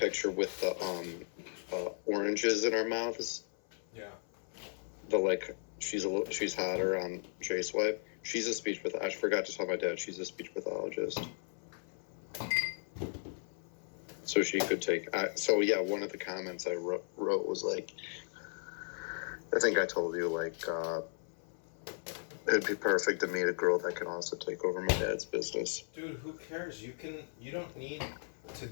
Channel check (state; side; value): silent; right; 54 dB below the other